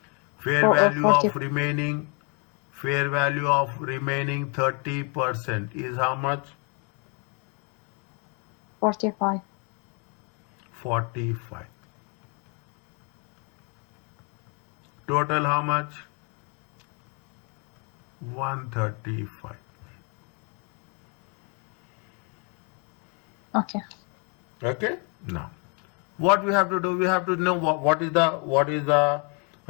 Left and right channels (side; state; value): right; quieter; 35.5 dB